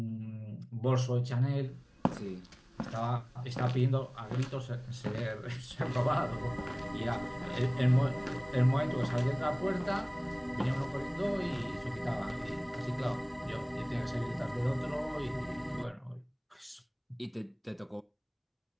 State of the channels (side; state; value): both; identical; correlation 1.00